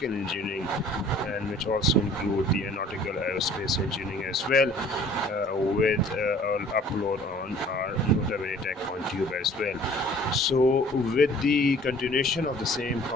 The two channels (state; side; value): normal; both; correlation 0.52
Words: engineering, and which also include the aeronautical aerospace engineering as well, with an upload on our Nota Bene Tech on Tube as well. So with the continuation of the same